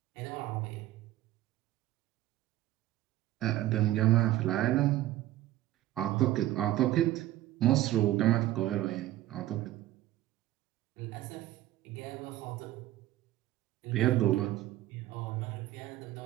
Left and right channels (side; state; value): left; quieter; 14.9 dB